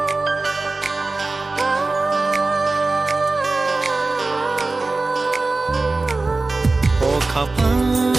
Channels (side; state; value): left; quieter; 3.4 dB